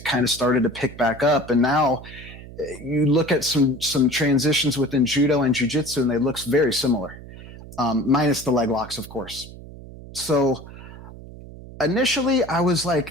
kind of started to pick back up. And now you look at some transitions within judo and jiu-jitsu, and they look very similar, minus the leg locks, of course. So initially I was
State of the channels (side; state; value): right; noise; hum, 16 dB below the sound